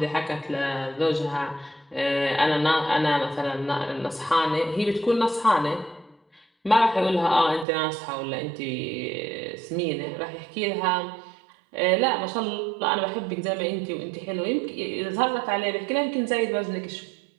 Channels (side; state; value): left; drops out; at 7.7 s